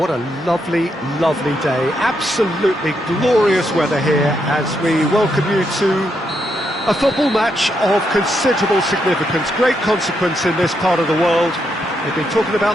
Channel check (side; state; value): both; normal; correlation 0.80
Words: a lovely, lovely day. Absolutely glorious weather here as we welcome you to a football match of considerable significance, great consequence in this part of the world. They've been talking